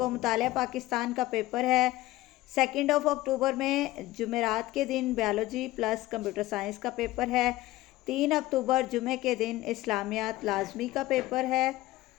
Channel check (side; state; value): right; quieter; 17.3 dB